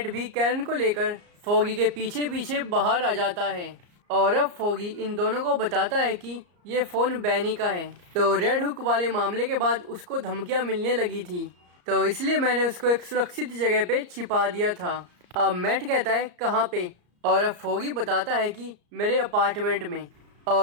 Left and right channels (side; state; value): left; late; 34 ms